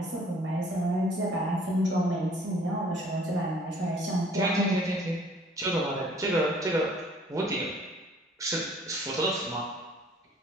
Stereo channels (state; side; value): normal; both; correlation 0.56